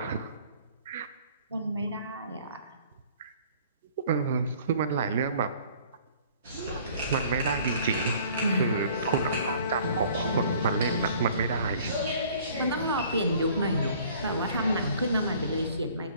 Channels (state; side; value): inverted; both; correlation -0.54